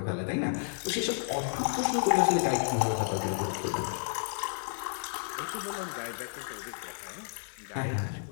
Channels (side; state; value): right; silent; digital silence